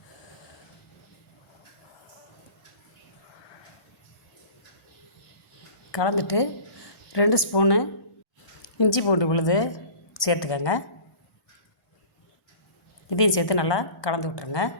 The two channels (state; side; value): late; right; 1.2 ms